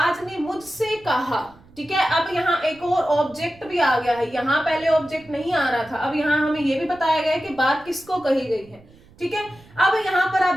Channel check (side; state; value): right; noise; rumble, 26 dB below the sound